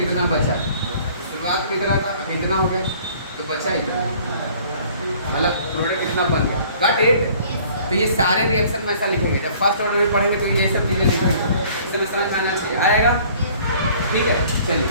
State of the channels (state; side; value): inverted; both; correlation -0.54